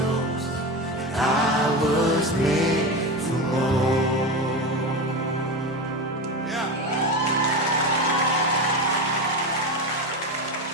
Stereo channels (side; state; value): both; normal; correlation 0.21